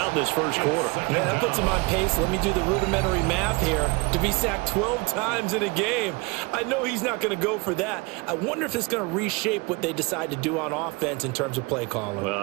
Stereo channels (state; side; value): quieter; left; 26.8 dB